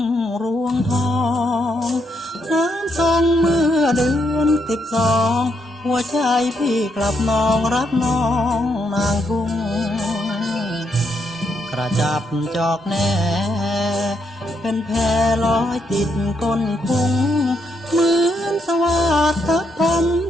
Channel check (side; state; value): both; normal; correlation 0.78